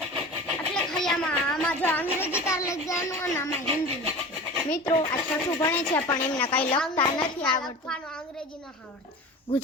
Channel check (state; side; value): normal; both; correlation 0.34